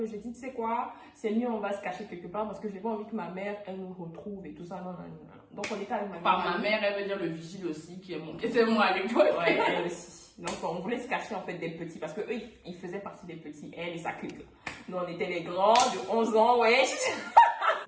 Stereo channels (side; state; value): both; identical; correlation 1.00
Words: J'ai dit tu sais quoi, c'est mieux, on va se cacher quelque part parce que j'ai pas envie que ma mère elle nous retrouve et tout ça. Non, non, non. Donc on était avec ma mère. Par ma mère, elle veut dire le vigile aussi qui était moi à l'époque. Ouais, elle aussi. Donc on voulait se cacher en fait des petits parce que eux ils faisaient partie des petits, elle et sa clique. Nous on était les grands de 11 ans, ouais.